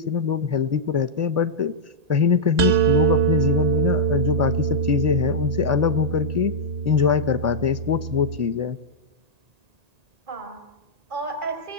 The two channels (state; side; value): late; left; 1.8 ms